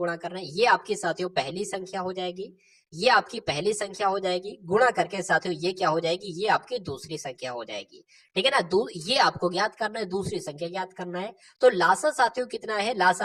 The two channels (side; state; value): both; identical; correlation 1.00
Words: करना है। ये आपकी साथियों पहली संख्या हो जाएगी, ये आपकी पहली संख्या हो जाएगी। गुणा करके साथियों ये क्या हो जाएगी, ये आपकी दूसरी संख्या हो जाएगी। ठीक है ना, ये आपको ज्ञात करना है, दूसरी संख्या ज्ञात करना है। तो लासा साथियों कितना है,